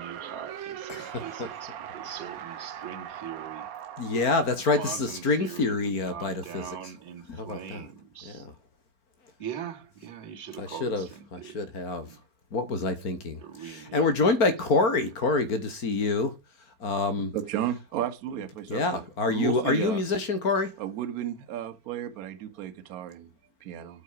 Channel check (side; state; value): right; late; 4.4 ms